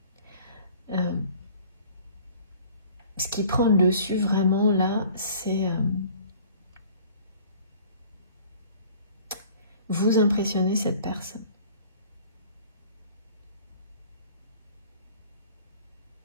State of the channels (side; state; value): both; inverted; correlation -0.50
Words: Ce qui prend le dessus vraiment là, c'est vous impressionner cette personne.